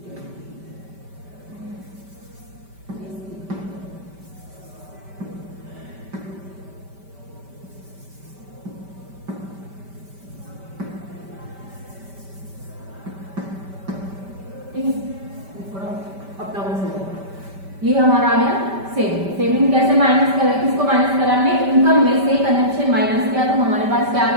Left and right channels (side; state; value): left; late; 5.1 ms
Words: ये हमारा आ गया सेविंग। सेविंग कैसे माइनस करें, किसको माइनस करा हमने, इनकम में से कंजम्पशन माइनस किया, तो हमारे पास क्या आ